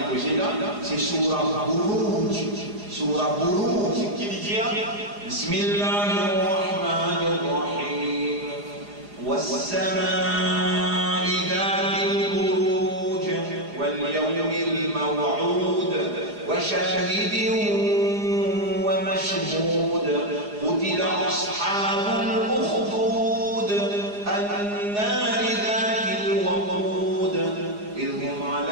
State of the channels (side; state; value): left; late; 4.8 ms